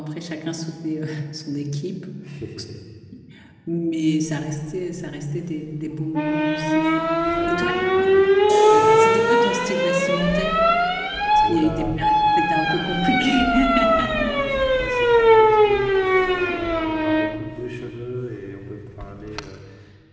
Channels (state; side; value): identical; both; correlation 1.00